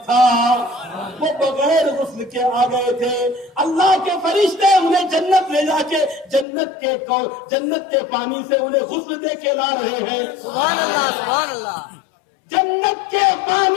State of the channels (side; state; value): right; drops out; at 6.5 s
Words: تھا، وہ بغیر غسل کے آ گئے تھے. اللہ کے فرشتے انہیں جنت لے جا کے جنت کے پانی سے انہیں غسل دے کے لا رہے ہیں. سبحان اللہ سبحان اللہ. جنت کے